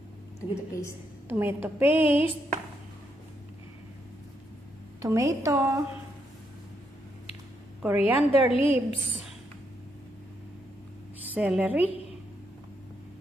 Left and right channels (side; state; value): both; normal; correlation 0.78